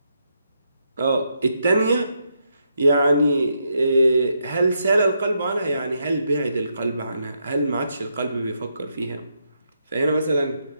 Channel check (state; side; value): inverted; both; correlation -0.80